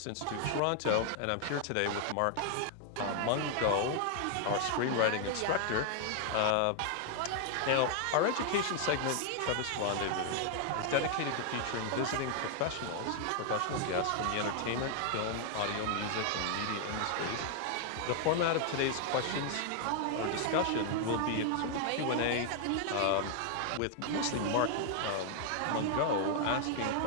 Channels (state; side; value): different; both; correlation 0.00